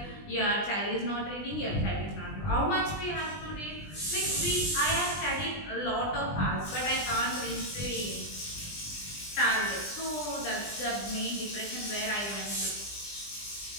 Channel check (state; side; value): late; right; 20 ms